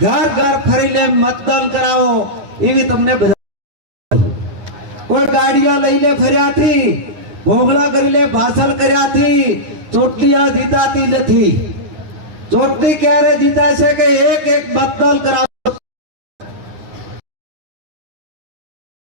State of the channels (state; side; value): late; left; 9.7 ms